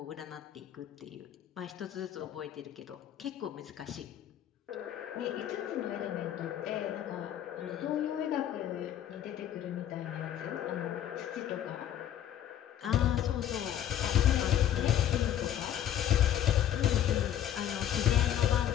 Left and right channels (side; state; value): right; quieter; 10.8 dB